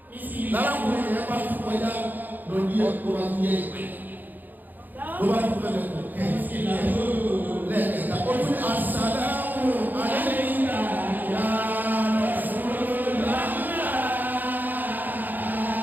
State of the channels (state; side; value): late; left; 0.086 ms